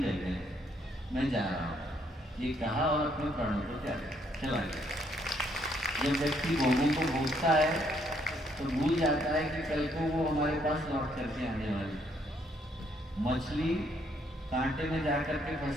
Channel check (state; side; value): normal; both; correlation 0.70